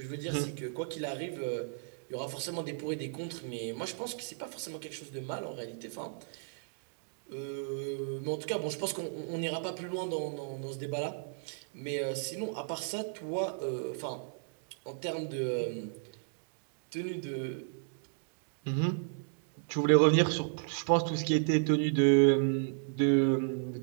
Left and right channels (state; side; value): silent; left; digital silence